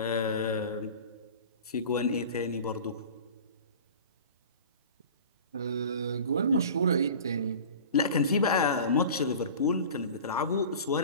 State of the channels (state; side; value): inverted; both; correlation -0.39